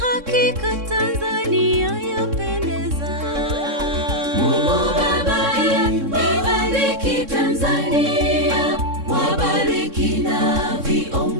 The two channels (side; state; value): left; late; 3.6 ms